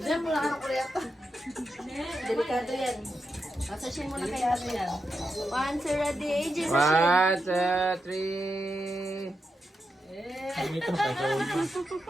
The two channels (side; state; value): both; normal; correlation 0.87